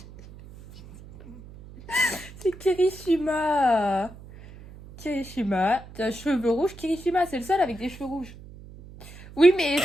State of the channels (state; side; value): noise; right; hum, 18 dB below the sound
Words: C'est Kirishima. Kirishima. T'as cheveux rouges. Kirishima, c'est le seul avec des cheveux rouges. Oui, mais